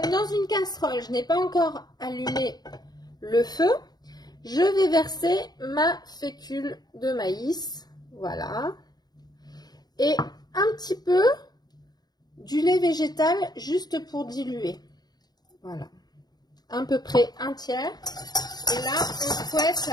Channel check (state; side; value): late; right; 0.20 ms